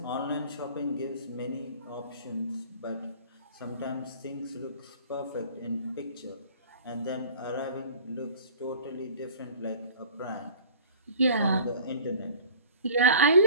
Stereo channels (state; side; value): inverted; both; correlation -0.45